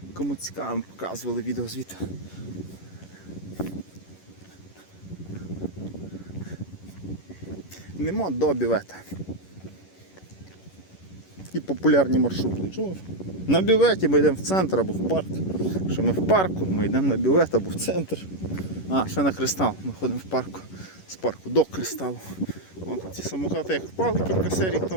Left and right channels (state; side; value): late; right; 11 ms